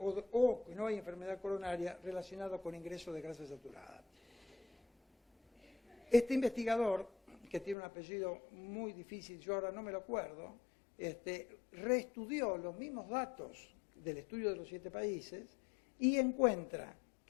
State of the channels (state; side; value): drops out; right; at 7.8 s